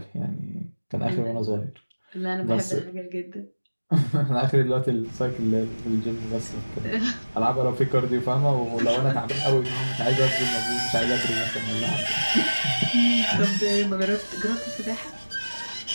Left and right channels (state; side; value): inverted; both; correlation -1.00